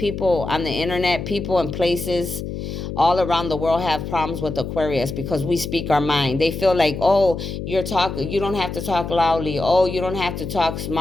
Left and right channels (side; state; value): left; noise; hum, 6 dB below the sound